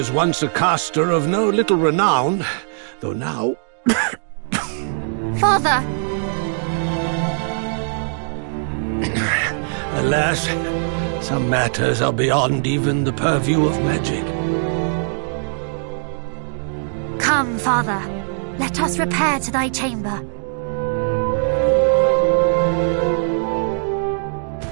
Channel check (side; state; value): left; silent; digital silence